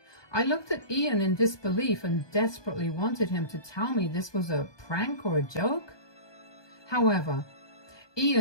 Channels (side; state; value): right; late; 1.2 ms